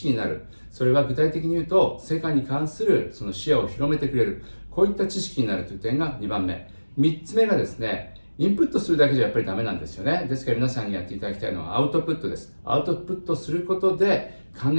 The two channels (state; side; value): inverted; both; correlation -1.00